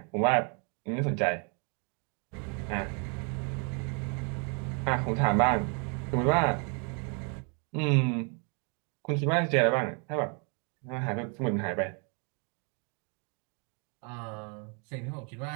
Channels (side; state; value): left; quieter; 37.0 dB